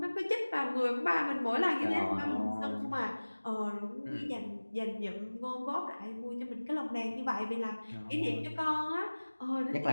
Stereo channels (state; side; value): inverted; both; correlation -1.00